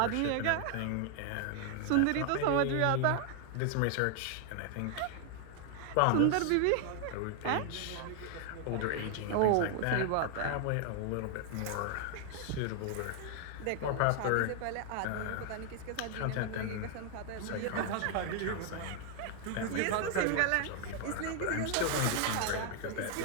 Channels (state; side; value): different; both; correlation 0.00